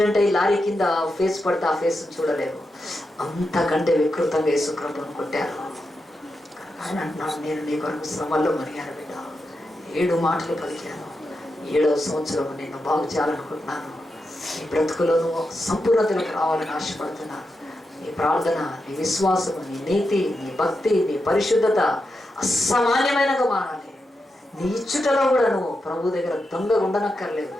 అయ్యి లారీ కింద ఫేస్ పడితే ఆ ఫేస్ చూడలేము, అంతకంటే వికృతంగా యేసు ప్రభువును కొట్టారు. ఆయన అంటున్నాడు, నేను నీ కొరకు శ్రమల్లో మునిగాను బిడ్డ, 7 మాటలు పలికాను. 7వ సంవత్సరం నేను బాగు చేయాలనుకుంటున్నాను. నీ బ్రతుకులో నువ్వు సంపూర్ణతలకు రావాలని ఆశపడుతున్నాను. నీ ప్రార్థన, నీ విశ్వాసము, నీ నీతి, నీ భక్తి, నీ పరిశుద్ధత అసామాన్యమైనగా మారాలి. నీ ఇచ్చుటలో కూడా నువ్వు ప్రభు దగ్గర దొంగ ఉండనక్కర్లేదు.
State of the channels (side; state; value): both; normal; correlation 0.87